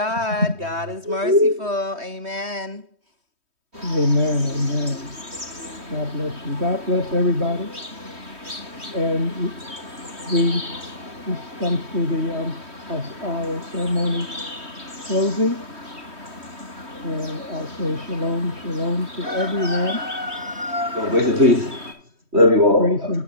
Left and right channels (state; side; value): late; left; 3.2 ms